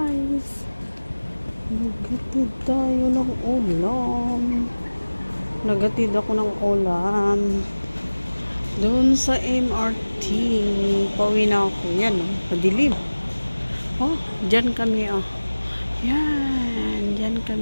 Nagatid tayo ng ulam. Nagatid ako ng ulam. Doon sa MRT. Pauwi na ako. Yan oh. Madilim. Oh, dyan kami oh. Yan. Dyan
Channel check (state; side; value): inverted; both; correlation -1.00